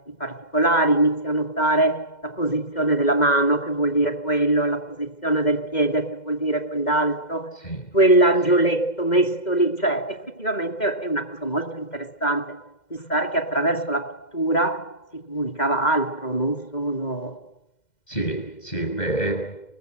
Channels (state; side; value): late; right; 2.1 ms